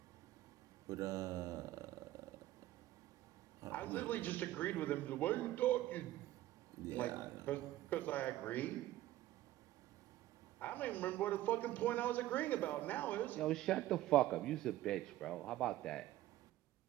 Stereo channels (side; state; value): left; quieter; 14.9 dB